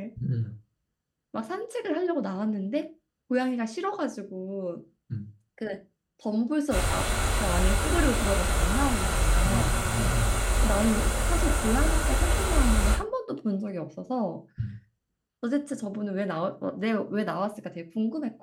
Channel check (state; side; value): identical; both; correlation 1.00